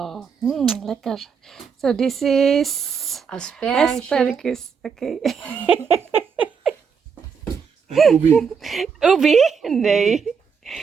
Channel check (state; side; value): quieter; left; 6.2 dB